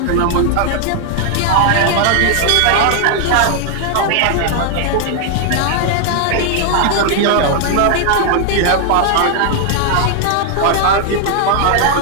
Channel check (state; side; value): different; both; correlation 0.00